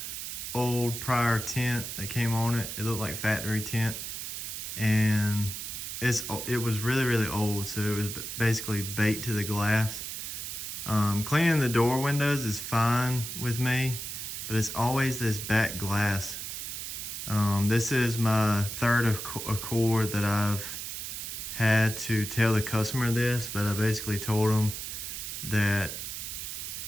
old prior tint that came on it. It looked like factory tint, and it was really old, so it was basically baked to the glass. Cleaning the door windows is fine with me, but it's always this back glass. This is my third Accord that I've had to tell the customer this, but I basically told them that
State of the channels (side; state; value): right; noise; hiss, 6 dB below the sound